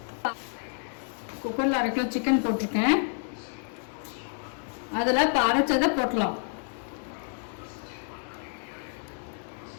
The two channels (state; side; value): silent; right; 56 dB below the other